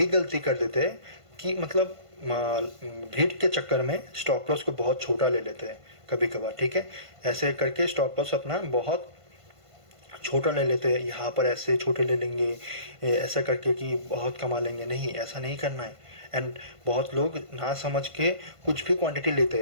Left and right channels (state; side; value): late; left; 1.5 ms